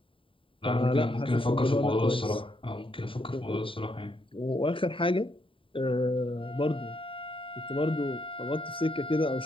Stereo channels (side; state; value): right; late; 0.25 ms